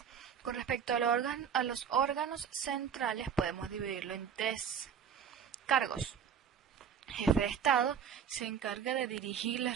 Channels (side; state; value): left; quieter; 7.7 dB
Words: Con respecto a los órganos centrales podemos dividirlo en tres cargos. Jefe de Estado se encarga de dirigir